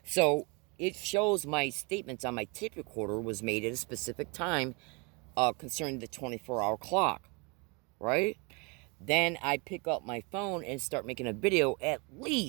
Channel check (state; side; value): quieter; left; 30.7 dB